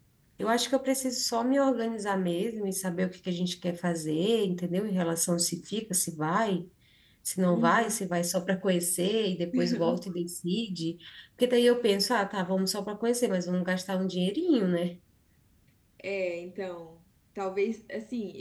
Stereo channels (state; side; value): identical; both; correlation 1.00